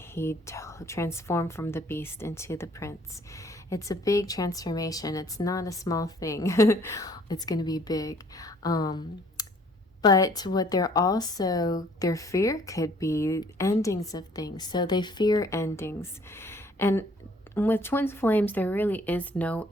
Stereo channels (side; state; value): both; normal; correlation 0.59